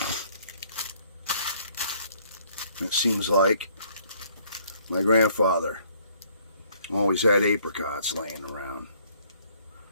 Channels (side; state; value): both; inverted; correlation -0.63